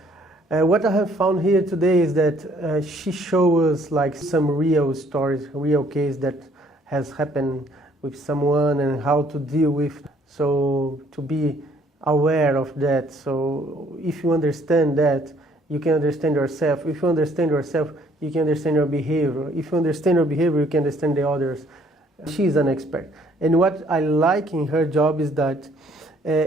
what I have found here today is that she shows us like some real stories, real case that has happened with someone and how to deal with. So to be aware of that. So if you understand that, you can understand yourself. If you understand yourself, you can understand your behavior. If you understand your behavior, you can understand the others. She's an expert. And what I like in her job is that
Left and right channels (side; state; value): both; normal; correlation 0.62